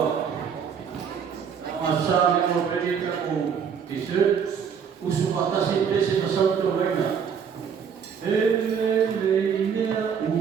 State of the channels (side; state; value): left; quieter; 7.1 dB